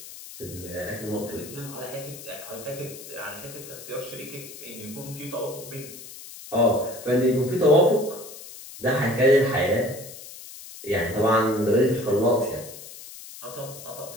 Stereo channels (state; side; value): noise; left; hiss, 14 dB below the sound